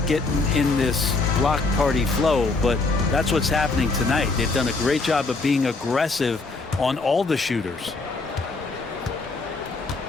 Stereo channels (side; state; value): right; quieter; 3.7 dB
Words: getting in this block party flow, but that's what's happening tonight. They've done a great job of being aggressive on all the shooters.